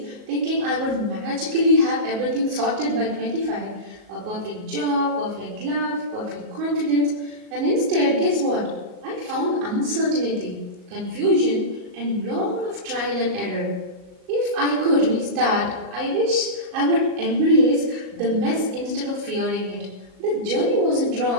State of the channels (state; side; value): late; left; 38 ms